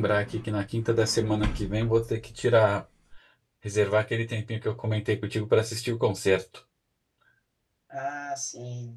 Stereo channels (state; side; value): identical; both; correlation 1.00